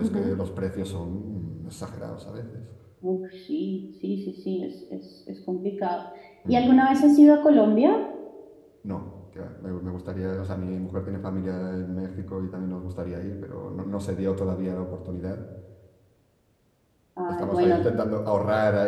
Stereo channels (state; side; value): identical; both; correlation 1.00